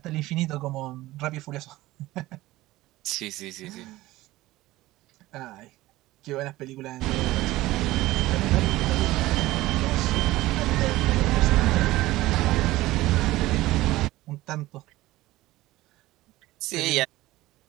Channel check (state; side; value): quieter; left; 17.6 dB